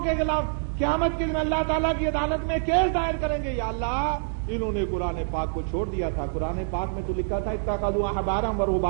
کے خلاف قیامت کے دن اللہ تعالیٰ کی عدالت میں کیس دائر کریں گے، یا اللہ انہوں نے قرآن پاک کو چھوڑ دیا تھا. قرآن پاک میں تو لکھا تھا اتخذوا احبارا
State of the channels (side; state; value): left; silent; digital silence